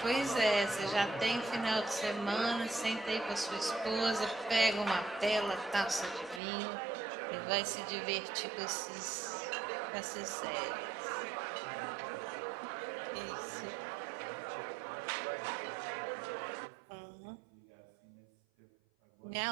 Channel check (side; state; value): left; drops out; at 6.4 s